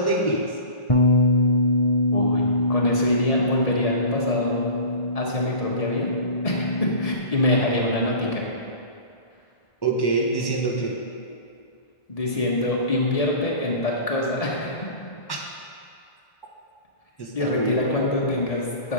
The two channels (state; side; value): late; right; 1.7 ms